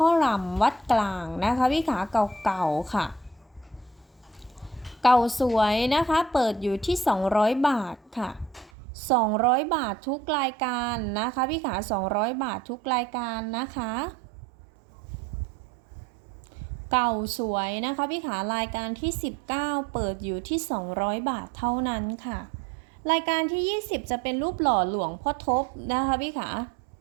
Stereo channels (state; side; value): drops out; left; at 8.7 s